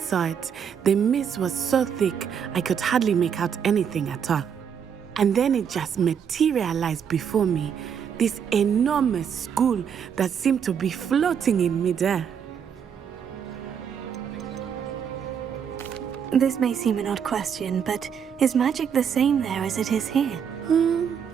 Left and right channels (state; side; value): quieter; left; 7.6 dB